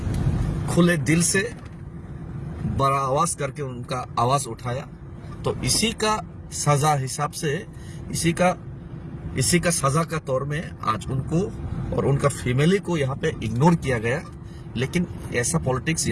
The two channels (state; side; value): identical; both; correlation 1.00